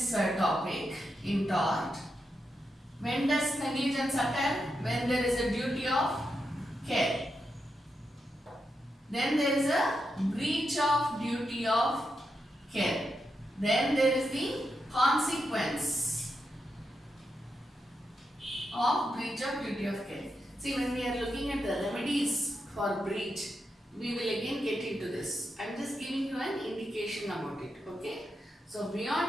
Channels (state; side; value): normal; both; correlation 0.85